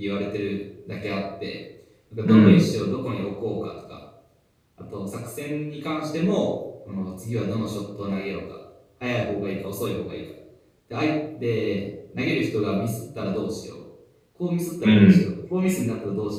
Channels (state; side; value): identical; both; correlation 1.00